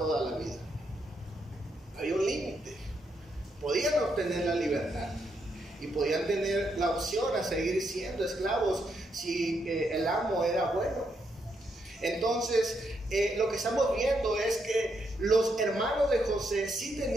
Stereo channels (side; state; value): both; normal; correlation 0.79